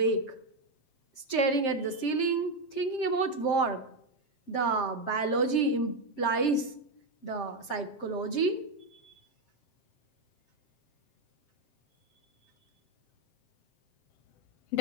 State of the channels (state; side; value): late; right; 7.6 ms